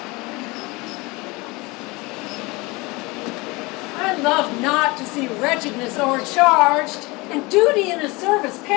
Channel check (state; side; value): quieter; right; 24.5 dB